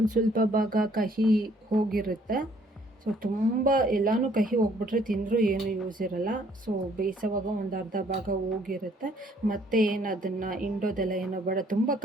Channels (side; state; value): both; normal; correlation 0.63